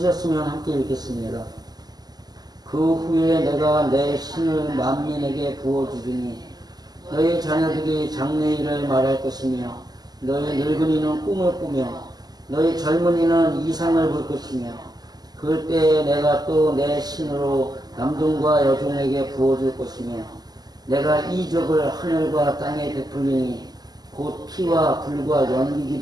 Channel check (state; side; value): late; left; 0.20 ms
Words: 함께 읽겠습니다. 그 후에 내가 내 신을 만민에게 부어주리니 너희 자녀들이 장래일을 말할 것이며 너희 늙은이는 꿈을 꾸며 너희 젊은이는 이상을 볼 것이며 그때에 내가 또 내 신으로 남종과 여종에게 부어줄 것이며 내가 이적을 하늘과 땅에 베풀리니 곧 피와 불과 연기